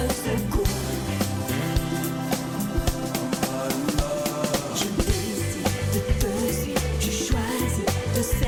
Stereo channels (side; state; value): both; identical; correlation 1.00